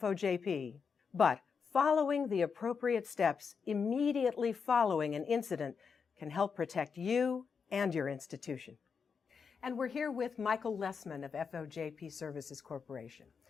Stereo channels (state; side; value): quieter; right; 5.9 dB